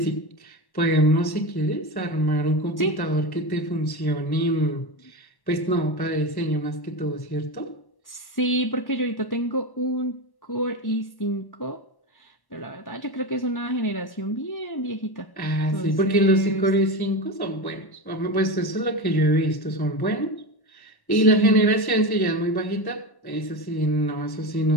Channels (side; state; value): right; late; 1.1 ms